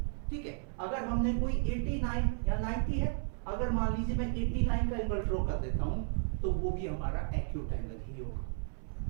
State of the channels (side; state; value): left; silent; 55 dB below the other